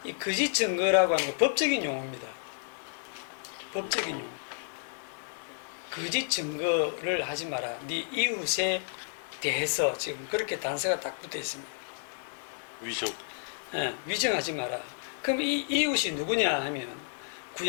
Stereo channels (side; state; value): right; silent; 57 dB below the other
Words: 이 거짓 증거라고 하는 건 법적인 용어입니다. 법적인 용어. 거짓 증거를 하지 마라. 네 이웃에 대해서 지금 그렇게 단서가 딱 붙어 있습니다. 위증. 네, 위증하지 마라. 그럼 이 이웃이 누구냐 하면